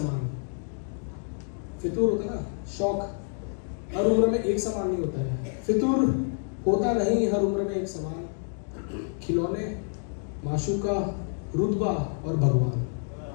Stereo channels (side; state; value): right; silent; 59 dB below the other